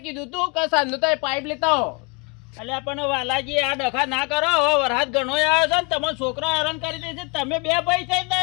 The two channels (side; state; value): right; quieter; 28.6 dB